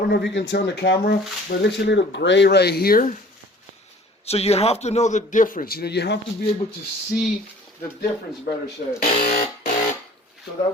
know if you can tell in the camera, but it looks a little gray right here. So you have to know the difference. You know, you have to be able to see the difference, better said. So that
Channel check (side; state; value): both; normal; correlation 0.49